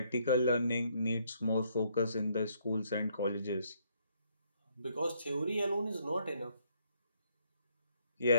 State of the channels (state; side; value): inverted; both; correlation -0.69